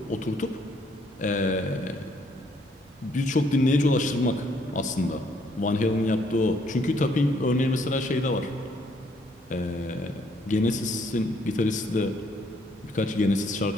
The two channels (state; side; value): normal; both; correlation 0.67